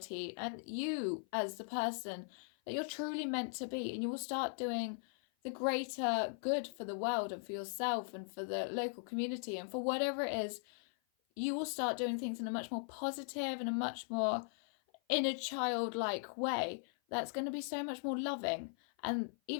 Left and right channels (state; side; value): silent; right; 52 dB below the other